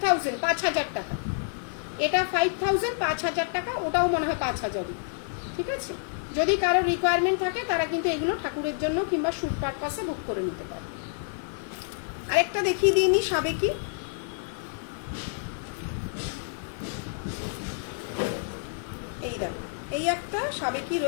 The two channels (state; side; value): silent; right; digital silence